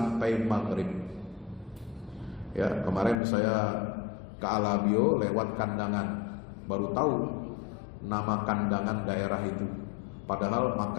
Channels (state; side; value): drops out; right; at 3.2 s